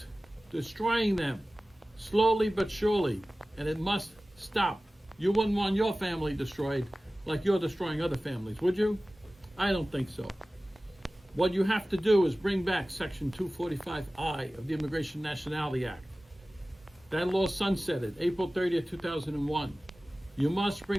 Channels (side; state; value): both; normal; correlation 0.97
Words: destroying them, slowly but surely, and it must stop. You wouldn't want your family destroyed like you're destroying other families, would you? I don't think so. What you have to do is bring back Section 245I of the Immigration Nationality Act. That law sunsetted April 30th, 2001. You must